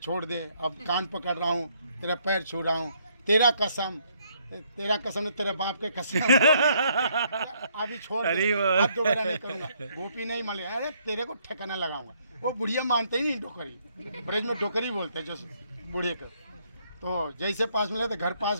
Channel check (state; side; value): inverted; both; correlation -0.69